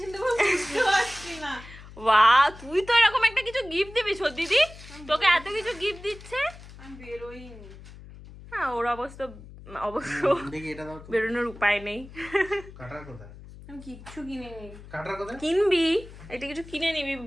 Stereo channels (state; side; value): noise; left; hum, 17 dB below the sound